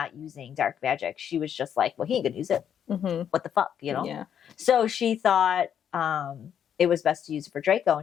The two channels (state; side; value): quieter; right; 8.9 dB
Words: using dark magic, she was just like, well, he ain't gonna use it. What the fuck, you know? Yeah. So she thought it was best to use it for Draco.